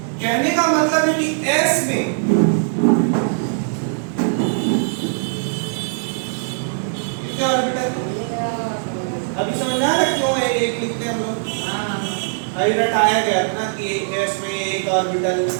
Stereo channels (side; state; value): left; silent; digital silence